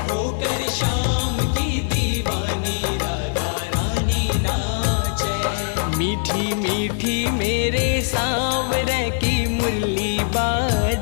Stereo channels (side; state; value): right; silent; 65 dB below the other